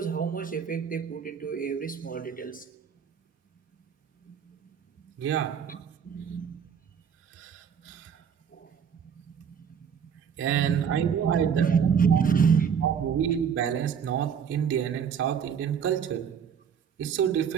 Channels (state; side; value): quieter; left; 7.4 dB